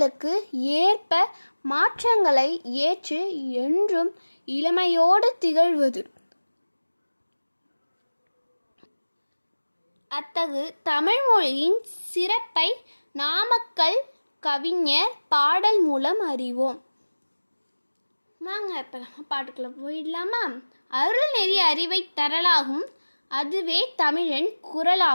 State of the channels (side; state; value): both; inverted; correlation -1.00